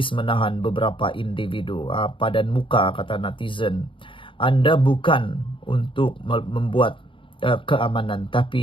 menahan beberapa individu. Padan muka, kata netizen. Anda bukan untuk membuat keamanan,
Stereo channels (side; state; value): right; late; 0.25 ms